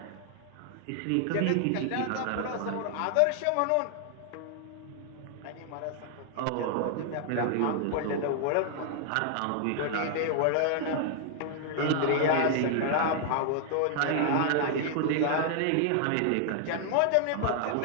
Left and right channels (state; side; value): different; both; correlation 0.00